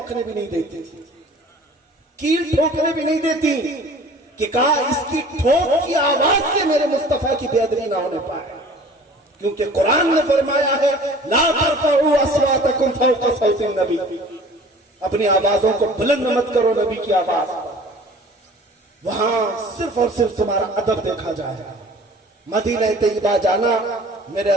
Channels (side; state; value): both; normal; correlation 0.47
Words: بھی نہیں دیتی، کیل ٹھوکنے بھی نہیں دیتی کہ کہا اس کی ٹھوک کی آواز سے میرے مصطفیٰ کی بے ادبی نہ ہونے پائے. کیونکہ قرآن نے فرمایا ہے لا ترفعوا اصواتکم فوق صوت النبی، اپنی آوازوں کو بلند مت کرو نبی کی آواز۔ وہاں صرف اور صرف تمہارا ادب دیکھا جائے گا۔ مدینہ طیبہ جانا میرے